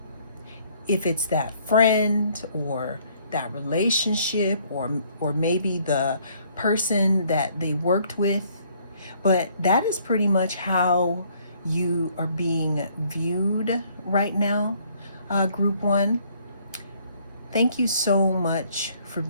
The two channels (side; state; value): both; inverted; correlation -0.63